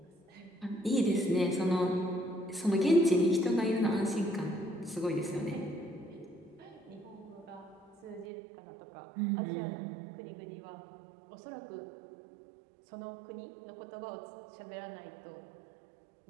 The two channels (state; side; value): drops out; left; at 8.2 s